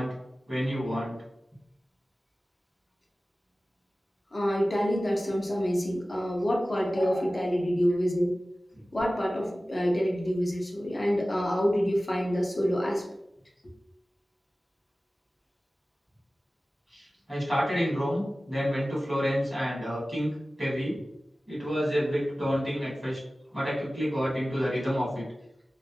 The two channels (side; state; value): both; normal; correlation 0.96